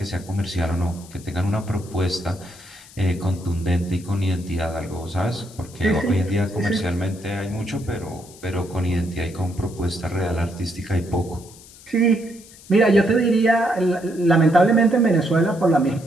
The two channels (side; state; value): left; noise; hiss, 21 dB below the sound